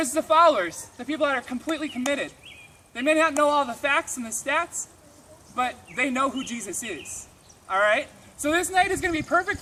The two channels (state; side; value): identical; both; correlation 1.00